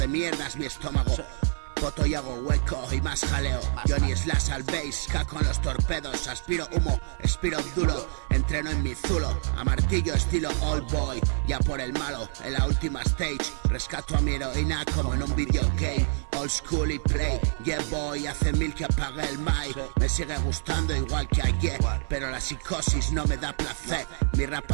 mierdas mi estómago. Poto y hago hueco y más jaleo. Johnny Slash al bass, caco en los torpedos. Aspiro humo, expiro duro. Entreno en mi zulo, a martillo estilo old boy. Ya por el malo, en la última stage. Rescato a mi heroína como en un videogame. Old school y play, yeah boy. Hace 1000 que apagué el mic. Me sigue gustando igual que ayer, pero la psicosis no me da placer. Mi rap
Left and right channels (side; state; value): left; silent; 60 dB below the other